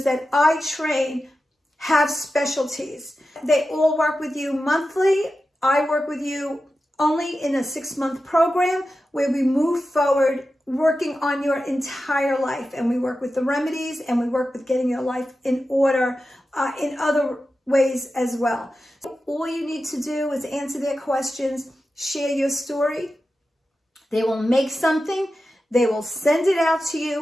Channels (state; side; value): normal; both; correlation 0.92